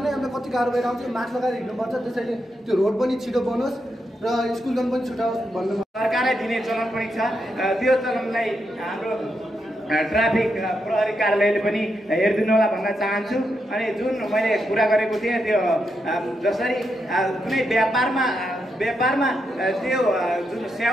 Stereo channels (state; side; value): normal; both; correlation 0.83